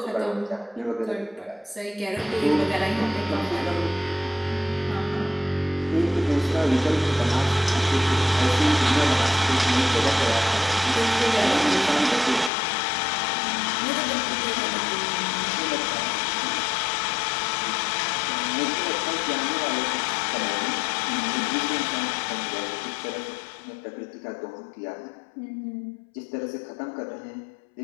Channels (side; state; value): right; drops out; at 12.5 s